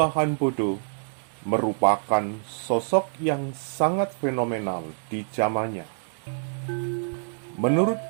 Bodo merupakan sosok yang sangat fenomenal di zamannya. Menurut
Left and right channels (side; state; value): left; silent; digital silence